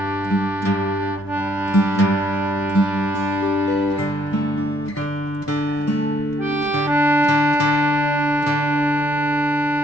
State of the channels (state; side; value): normal; both; correlation 0.69